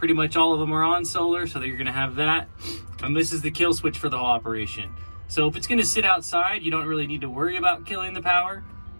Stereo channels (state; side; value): inverted; both; correlation -1.00